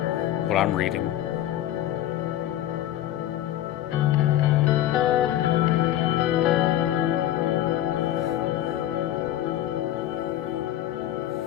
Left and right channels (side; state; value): right; quieter; 12.7 dB